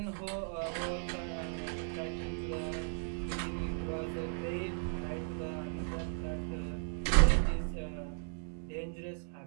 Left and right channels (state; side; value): silent; left; digital silence